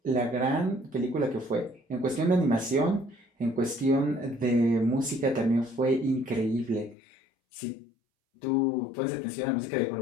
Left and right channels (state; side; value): drops out; right; at 7.0 s